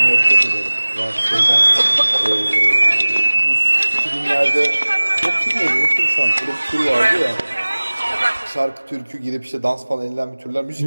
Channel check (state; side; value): inverted; both; correlation -1.00